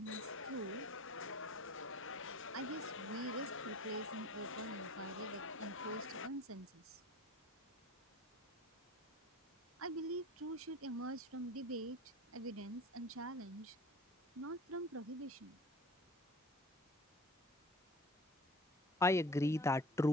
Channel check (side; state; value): both; normal; correlation 0.42